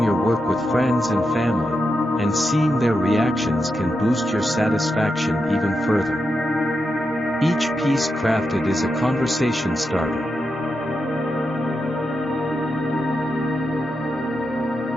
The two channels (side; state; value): both; normal; correlation 0.87